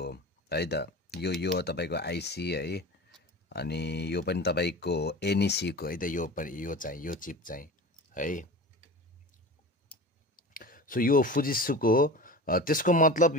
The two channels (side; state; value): both; normal; correlation 0.34